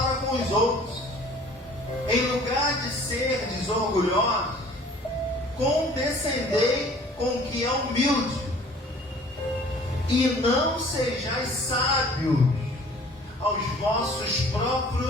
com os outros. Em lugar de ser desorgulhosos, condescendei com o que é humilde, e não sejais sábios aos vossos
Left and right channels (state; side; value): normal; both; correlation 0.50